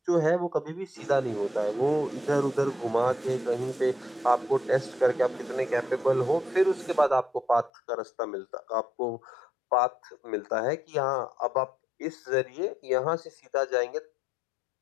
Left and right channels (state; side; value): drops out; right; at 7.7 s